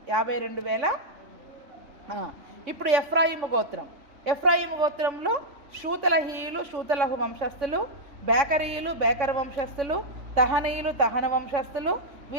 52,000. ఇప్పుడు ఎఫ్రాయిము గోత్రం. ఎఫ్రాయిము గోత్రంలో షూతలహీయులు షూతలహు వంశస్థులు, బేకరీయులు బేకర వంశస్థులు, తహనీయులు తహన వంశస్థులు.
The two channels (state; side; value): late; left; 3.6 ms